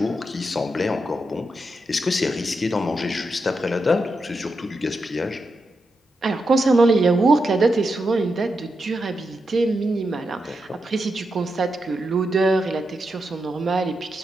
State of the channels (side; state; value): both; normal; correlation 0.86